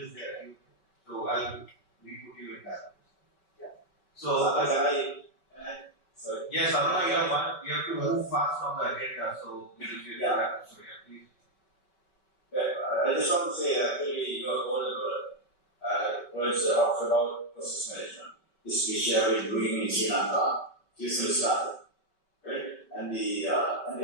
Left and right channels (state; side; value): late; right; 5.2 ms